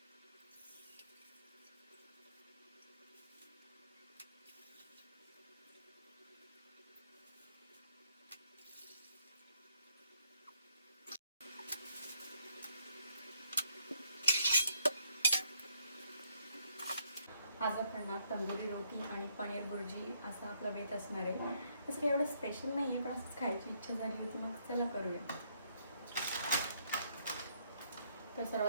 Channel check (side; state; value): both; inverted; correlation -0.71